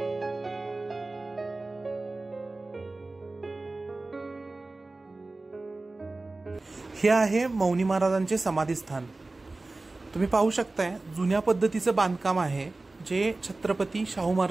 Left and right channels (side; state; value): left; quieter; 3.2 dB